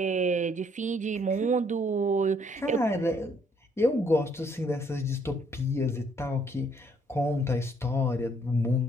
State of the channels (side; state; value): both; normal; correlation 0.66